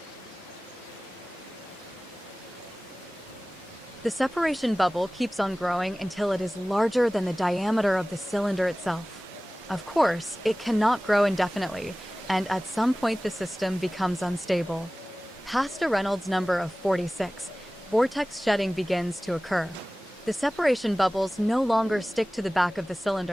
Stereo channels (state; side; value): normal; both; correlation 0.98